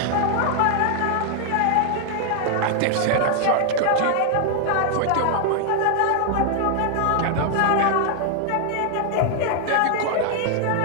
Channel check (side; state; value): both; different; correlation 0.00